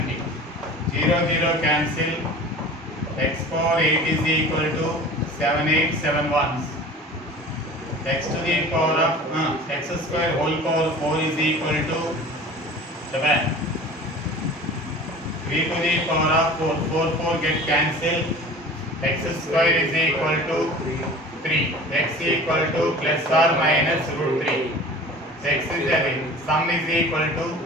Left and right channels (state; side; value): normal; both; correlation 0.40